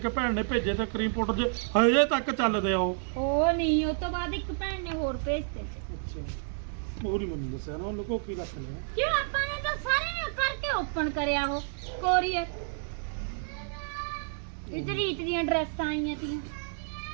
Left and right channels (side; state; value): left; silent; digital silence